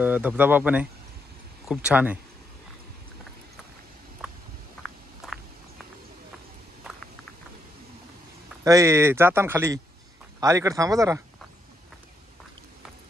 धबधबा पण आहे, खूप छान आहे. अय जाताना खाली अलीकडे थांबा जरा.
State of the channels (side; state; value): both; normal; correlation 0.78